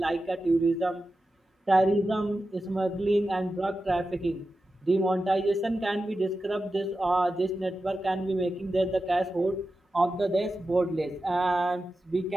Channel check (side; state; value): both; normal; correlation 0.92